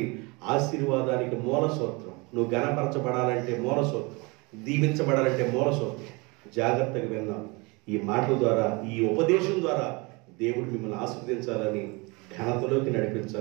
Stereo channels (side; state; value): left; quieter; 27.0 dB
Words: ఆశీర్వాదానికి మూల సూత్రం, నువ్వు ఘనపరచబడాలంటే మూల సూత్రం, దీవించబడాలంటే మూల సూత్రం. జాగ్రత్తగా విన్నాం. ఈ మాటల ద్వారా, ఈ ఉపదేశం ద్వారా దేవుడు మిమ్మల్ని ఆశీర్వదించాలని, ఘనతలోకి